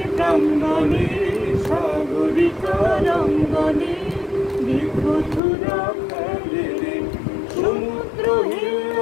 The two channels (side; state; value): right; drops out; at 5.4 s